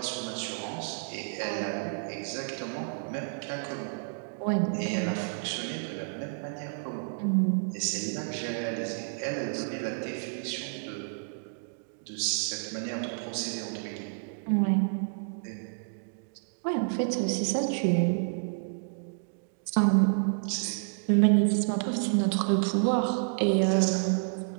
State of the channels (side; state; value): left; silent; digital silence